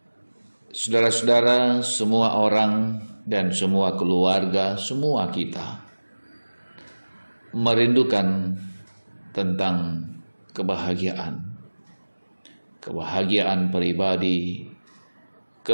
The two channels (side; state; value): both; inverted; correlation -1.00